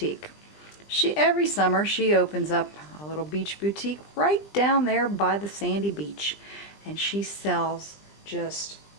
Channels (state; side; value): late; right; 20 ms